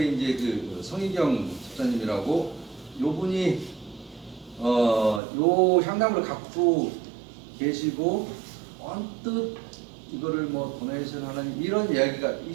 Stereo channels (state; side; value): drops out; left; at 5.2 s